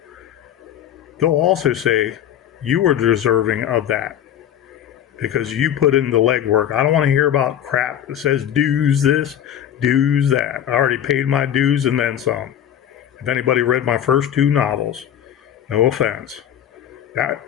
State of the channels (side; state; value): right; quieter; 10.3 dB